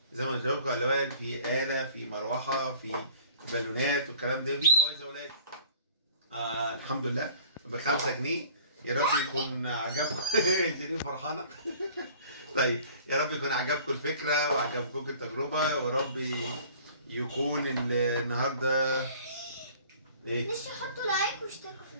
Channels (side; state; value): both; inverted; correlation -0.49